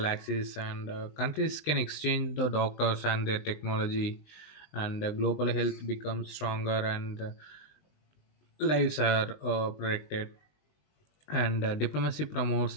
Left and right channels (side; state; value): right; late; 19 ms